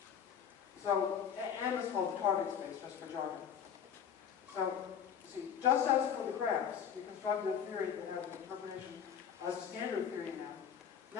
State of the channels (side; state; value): right; quieter; 8.1 dB